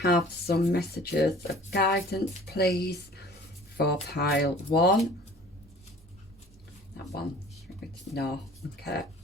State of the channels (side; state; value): both; normal; correlation 0.48